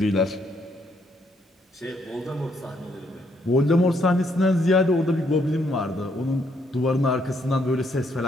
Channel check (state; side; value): normal; both; correlation 0.72